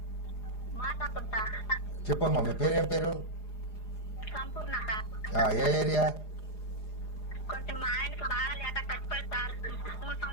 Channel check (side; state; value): right; late; 4.9 ms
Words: చెప్పమ్మా, మీ పేరు? ఏం పేరు? ఏ ఏరియా?